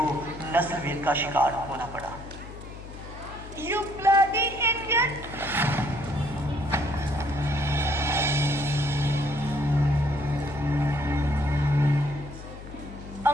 नस्लभेद का शिकार होना पड़ा। You bloody idiot!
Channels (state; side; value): noise; left; hum, 14 dB below the sound